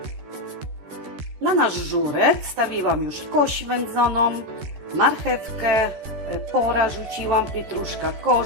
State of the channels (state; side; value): late; left; 13 ms